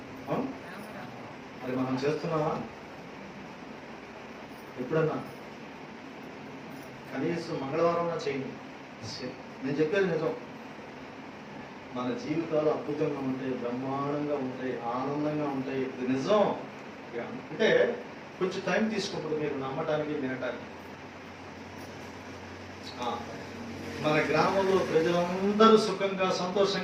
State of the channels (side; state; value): both; identical; correlation 1.00